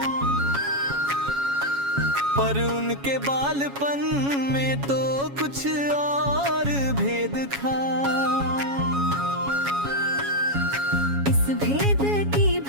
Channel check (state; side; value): late; left; 7.2 ms